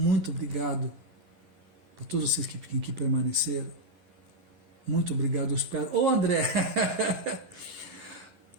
obrigado para todos vocês que permaneceram. Muito obrigado, eu espero. Ô André!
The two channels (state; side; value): late; left; 11 ms